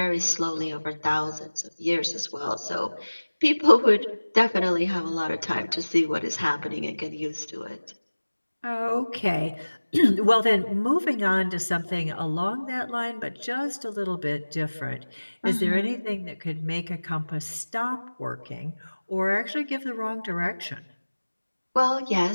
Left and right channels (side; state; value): both; inverted; correlation -1.00